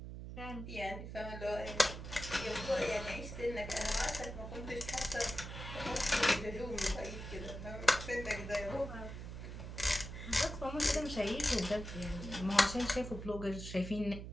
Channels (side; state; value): right; noise; hum, 8 dB below the sound